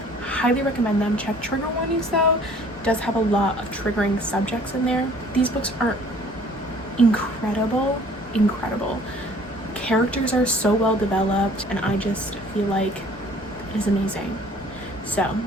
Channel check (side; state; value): both; normal; correlation 0.54